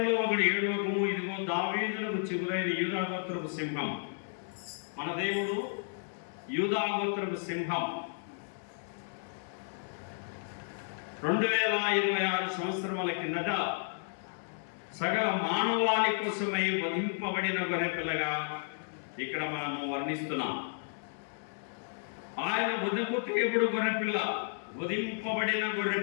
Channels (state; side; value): silent; right; digital silence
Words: ఒకడు 7వ, ఇదిగో దావీదులకు చిగురైన యూదా గోత్రపు సింహం. మన దేవుడు యూదా గోత్రపు సింహం. 2026 సంవత్సరముల కిందట సకల మానవాళి కోసమై వధింపబడిన గొర్రెపిల్లగా ఇక్కడ మనము వర్ణిస్తున్నాం. ఆయన వధకు తేబుడు గొర్రెపిల్ల, వధింపబడిన